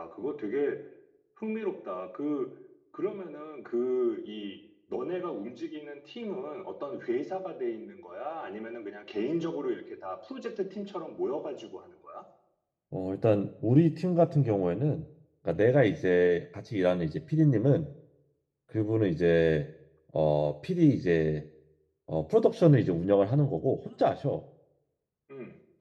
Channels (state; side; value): identical; both; correlation 1.00